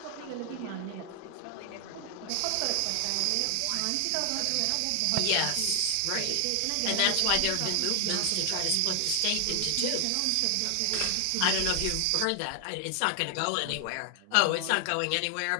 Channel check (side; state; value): both; different; correlation 0.00